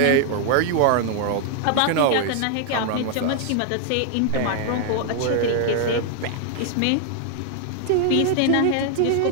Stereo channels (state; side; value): different; both; correlation 0.00